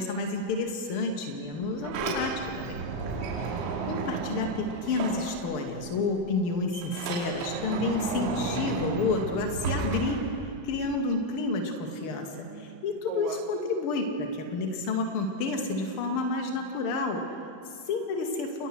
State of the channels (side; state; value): right; late; 6.8 ms